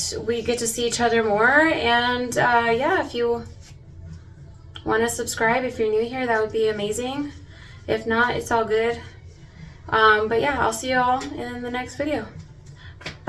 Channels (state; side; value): identical; both; correlation 1.00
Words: we get to see each other more. And yeah, if you want to subscribe, if you're new here, that would be amazing. If not, it's all good. But yeah, I'll see you all in the next video.